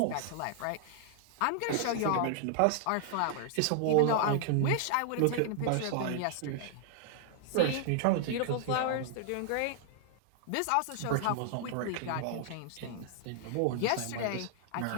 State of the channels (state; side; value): different; both; correlation 0.00